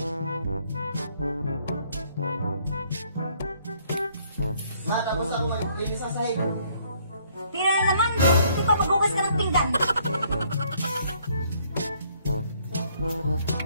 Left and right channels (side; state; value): both; inverted; correlation -0.65